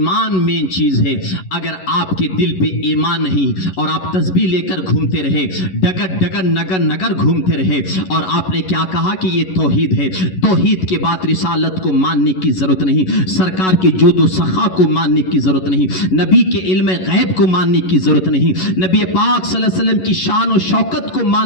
مین چیز ہے. اگر آپ کے دل پہ ایمان نہیں اور آپ تسبیح لے کر گھومتے رہے، ڈگر ڈگر نگر نگر گھومتے رہے، اور آپ نے کیا کہا کہ یہ توحید ہے، توحید کے بعد رسالت کو ماننے کی ضرورت نہیں، سرکار کے جود و سخا کو ماننے کی ضرورت نہیں، نبی کے علم غیب کو ماننے کی ضرورت نہیں، نبی پاک صلی اللہ علیہ وسلم کی شان و شوکت کو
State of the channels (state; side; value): late; right; 11 ms